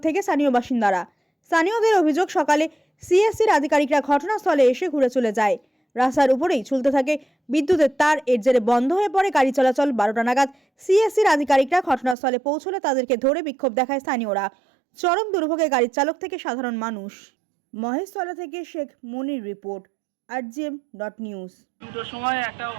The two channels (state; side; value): drops out; left; at 12.2 s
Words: থেকে স্থানীয় বাসিন্দারা। স্থানীয়দের অভিযোগ, সকালে সিএসসির আধিকারিকরা ঘটনাস্থলে এসে ঘুরে চলে যায়। রাস্তার উপরেই ঝুলতে থাকে বিদ্যুতের তার। এর জেরে বন্ধ হয়ে পড়ে গাড়ি চলাচল। 12টা নাগাদ সিএসসির আধিকারিকরা ঘটনাস্থলে পৌঁছলে তাদেরকে ধরে বিক্ষোভ দেখায় স্থানীয়রা। চরম দুর্ভোগে গাড়ির চালক থেকে সাধারণ মানুষ। মহেশতলা থেকে শেখ মনির রিপোর্ট, rgm.news। দুটোর সময় একটা